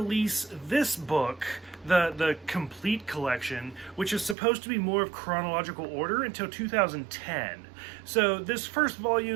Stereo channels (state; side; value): drops out; left; at 4.4 s